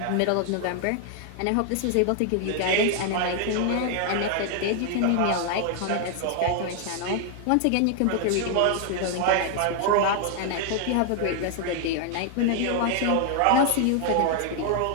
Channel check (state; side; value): different; both; correlation 0.00